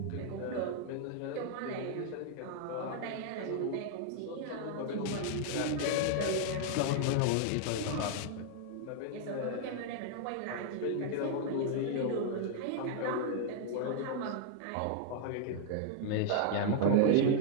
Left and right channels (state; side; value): different; both; correlation 0.00